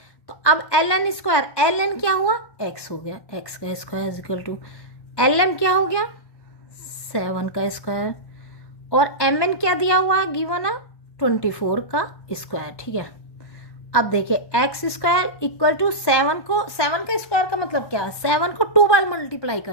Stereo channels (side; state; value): right; late; 1.1 ms